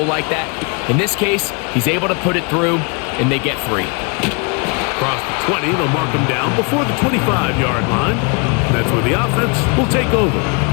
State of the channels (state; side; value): quieter; right; 33.4 dB